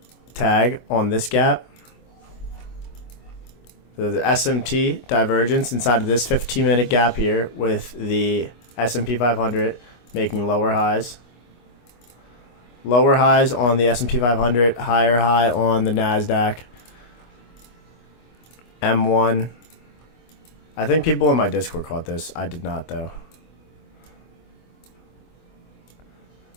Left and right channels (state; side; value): late; right; 25 ms